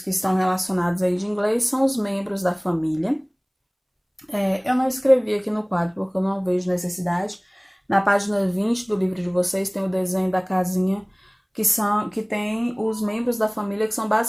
que estão relacionados aí de inglês são os membros da família. Eu não escrevi aqui no quadro porque eu não vejo necessidade. Na página 20 do livro de vocês tem o desenho da casinha que tem os membros da família, que são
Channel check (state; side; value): identical; both; correlation 1.00